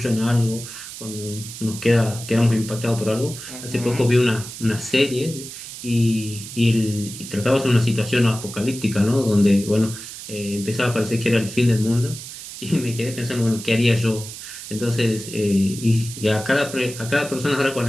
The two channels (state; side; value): noise; right; hiss, 11 dB below the sound